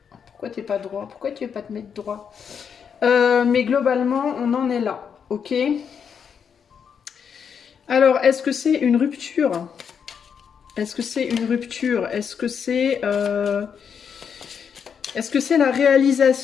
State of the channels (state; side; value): quieter; right; 7.1 dB